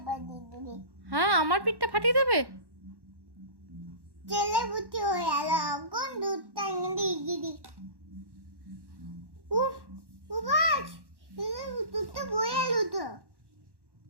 বানিয়ে দেবে। হ্যাঁ, আমার পিঠটা ফাটিয়ে দেবে। ছেলে বুঝি হয়ে গেল, কোন দুধটা এনে গিরি। উফ, উবাস, দুধটা বয়ে এলো তো।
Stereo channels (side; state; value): left; late; 1.1 ms